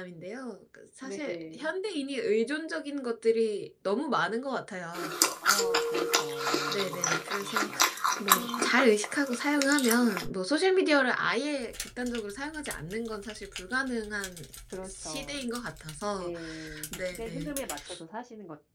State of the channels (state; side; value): identical; both; correlation 1.00